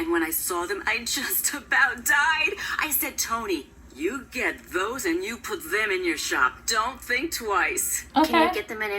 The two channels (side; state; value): both; identical; correlation 1.00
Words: when I saw them, I just about died. I said, Toni, you get those and you put them in your shop. Don't think twice. Okay. Can you get them in